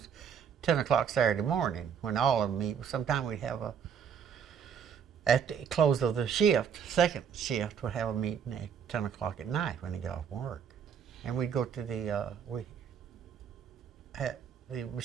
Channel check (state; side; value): quieter; left; 7.6 dB